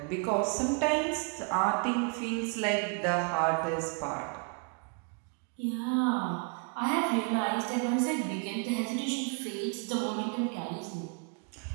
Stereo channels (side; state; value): left; quieter; 36.5 dB